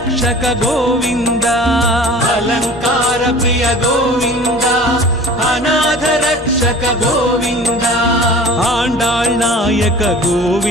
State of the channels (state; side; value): normal; both; correlation 0.42